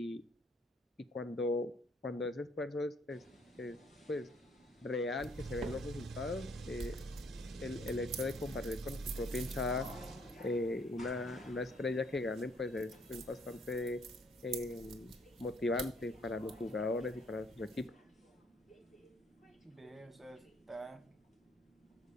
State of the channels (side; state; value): both; normal; correlation 0.64